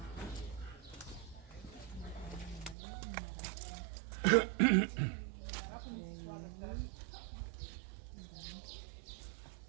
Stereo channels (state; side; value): drops out; left; at 2.8 s